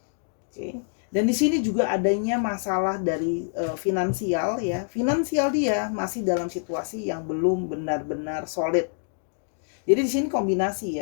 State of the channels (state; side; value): silent; right; 61 dB below the other